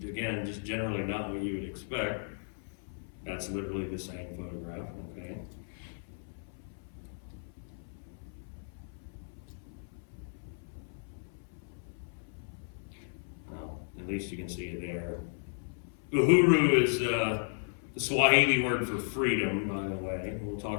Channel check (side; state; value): right; silent; 55 dB below the other